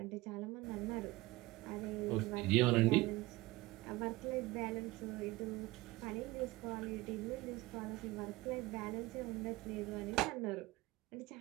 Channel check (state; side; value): quieter; left; 20.0 dB